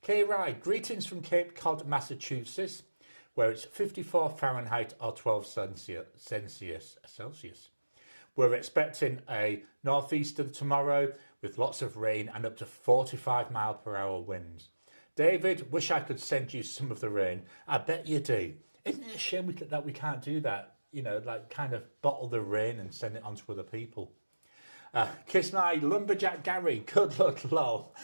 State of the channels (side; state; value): both; inverted; correlation -1.00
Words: K. Rye, greetings from Cape Cod, Massachusetts, where it's 54 Fahrenheit or 12 Celsius. We're expecting a northeaster tomorrow with lots of rain and up to 45-mile-per-hour winds. David, wish I could send you some of the rain. I bet you do. Isn't it a shame that we can't do that? You know, like kind of bottle the rain and send it on to other people. Kiss my lumberjack Gary. Good luck, lol.